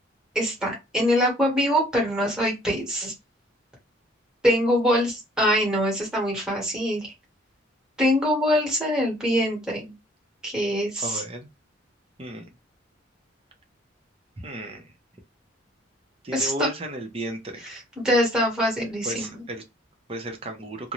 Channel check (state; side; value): normal; both; correlation 0.58